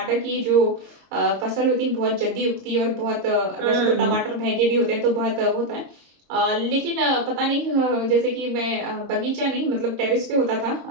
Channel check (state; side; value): late; left; 22 ms